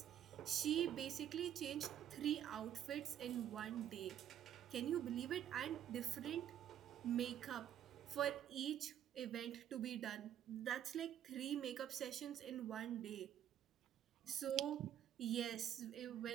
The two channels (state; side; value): quieter; left; 10.4 dB